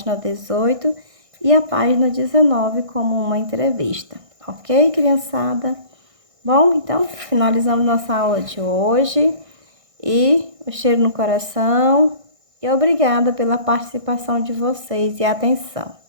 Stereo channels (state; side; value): late; left; 1.6 ms